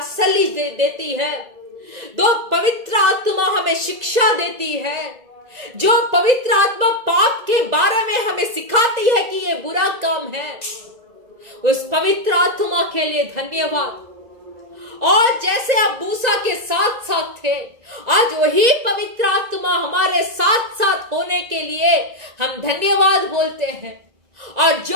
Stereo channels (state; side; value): late; left; 1.9 ms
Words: देती है, जो पवित्र आत्मा हमें शिक्षा देती है, जो पवित्र आत्मा पाप के बारे में हमें सिखाती है कि ये बुरा काम है। उस पवित्र आत्मा के लिए धन्यवाद। और जैसे आप मूसा के साथ साथ थे, आज वही पवित्र आत्मा हमारे साथ साथ होने के लिए हम धन्यवाद बोलते हैं। और